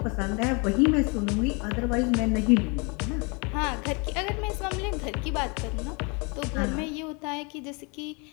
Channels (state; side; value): quieter; right; 31.7 dB